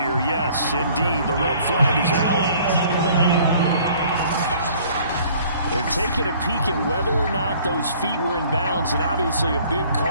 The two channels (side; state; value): both; inverted; correlation -0.55